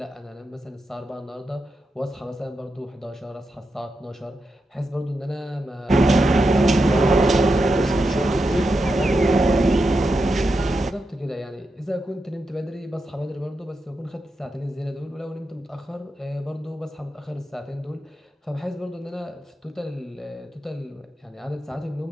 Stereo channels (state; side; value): normal; both; correlation 0.87